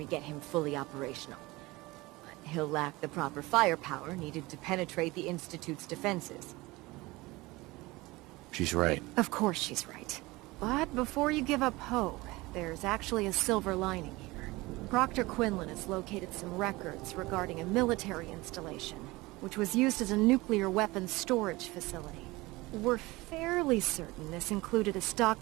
get him fully operational. But he'll lack the proper firepower needed to penetrate the Institute's defenses. She's right. Of course she's right. But before you give up hope, there's actually a silver lining here. Proctor Quinlan has located some records regarding a military installation, which was used as a nuclear weapons storage facility. We're fairly certain this included a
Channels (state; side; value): quieter; left; 21.4 dB